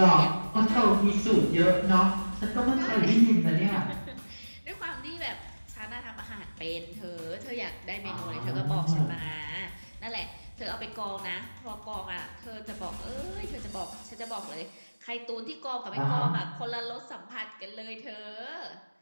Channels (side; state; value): both; inverted; correlation -1.00